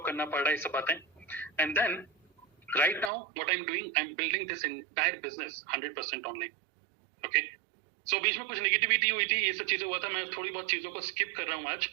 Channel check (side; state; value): left; drops out; at 3.1 s